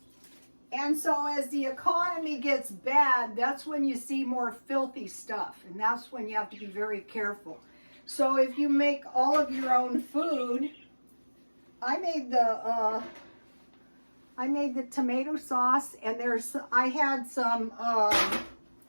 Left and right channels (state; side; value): inverted; both; correlation -1.00